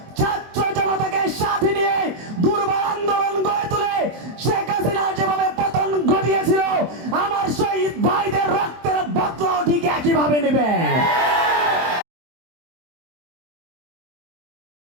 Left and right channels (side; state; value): left; late; 24 ms